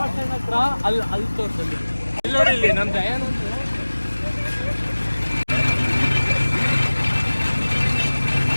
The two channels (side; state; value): both; inverted; correlation -1.00